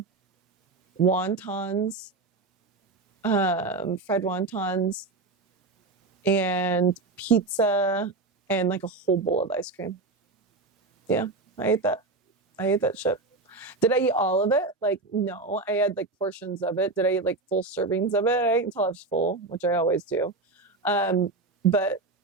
wontons, fried wontons, and pizza, and like a whole bowl of ice cream. Yeah. I ate that shit. Did I eat all of it? Like, no, I had like portions of it. Did I eat like full servings of it? I ate until I was full, which I always do. But,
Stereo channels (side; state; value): left; quieter; 3.5 dB